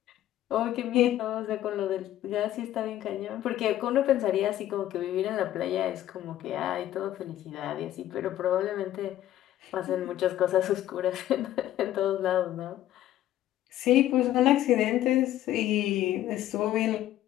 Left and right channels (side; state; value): right; quieter; 13.0 dB